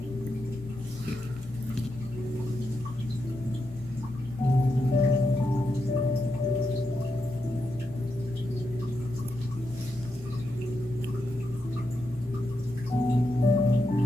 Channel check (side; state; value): both; normal; correlation 0.85